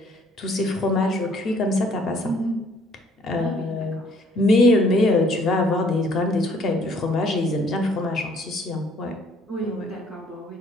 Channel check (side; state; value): both; normal; correlation 0.61